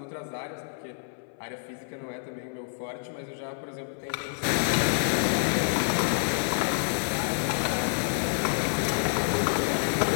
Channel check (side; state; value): right; silent; 57 dB below the other